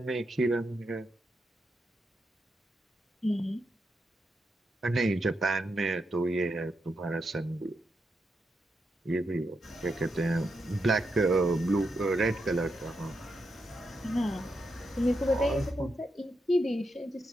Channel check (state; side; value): normal; both; correlation 0.84